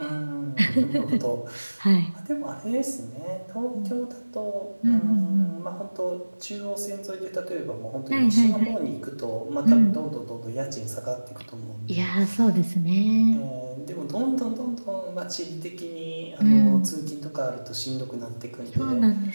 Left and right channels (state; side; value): inverted; both; correlation -1.00